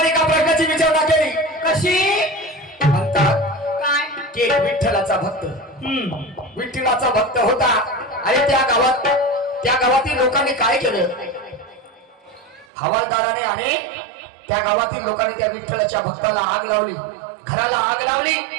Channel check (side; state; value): left; drops out; at 12.7 s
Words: एका प्रश्नाची विचारणा केली. कशी म्हणतात काय की विठ्ठलाचा भक्त विठ्ठलाचा भक्त होता आणि त्या गावातील लोकांनी काय केलं? हवालदाराने आणि त्या गावातील लोकांनी त्या विठ्ठलाच्या भक्ताला आग लावली, घराला आग लावली